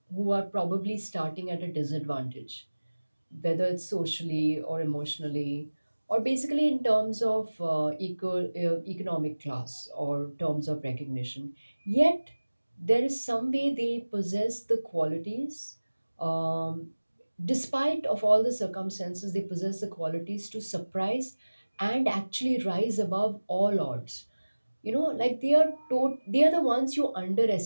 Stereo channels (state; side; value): inverted; both; correlation -1.00